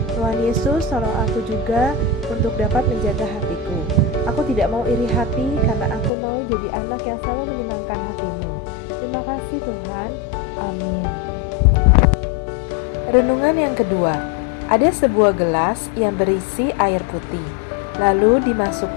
Tuhan Yesus, tolong aku juga untuk dapat menjaga hatiku. Aku tidak mau iri hati karena aku mau jadi anak yang selalu menyenangkan hatimu. Terima kasih Tuhan. Amin. Renungan yang kedua. Ada sebuah gelas yang berisi air putih. Lalu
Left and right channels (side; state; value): right; drops out; at 6.1 s